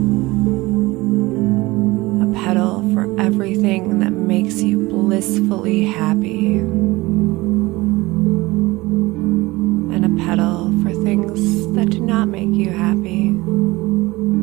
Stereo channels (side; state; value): left; quieter; 21.0 dB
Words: A petal for everything that makes you blissfully happy. And a petal for things that do not make you happy.